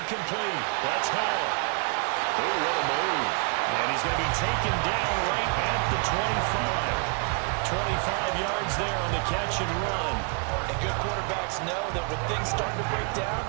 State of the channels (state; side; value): quieter; left; 38.7 dB